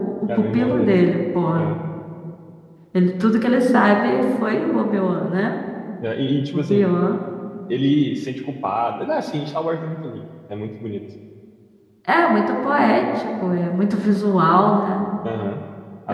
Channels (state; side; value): identical; both; correlation 1.00